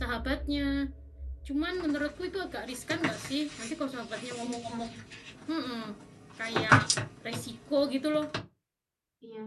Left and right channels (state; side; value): identical; both; correlation 1.00